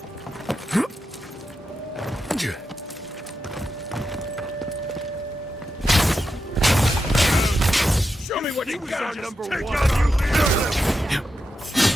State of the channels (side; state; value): both; normal; correlation 0.87